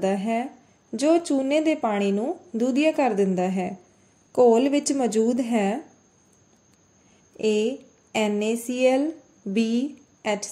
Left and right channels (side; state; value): both; identical; correlation 1.00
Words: ਹੈ ਜੋ ਚੂਨੇ ਦੇ ਪਾਣੀ ਨੂੰ ਦੁਧੀਆ ਕਰ ਦਿੰਦਾ ਹੈ। ਘੋਲ ਵਿੱਚ ਮੌਜੂਦ ਹੈ A NaCl, B